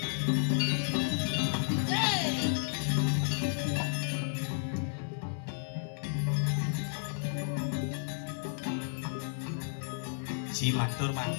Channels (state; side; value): silent; right; 56 dB below the other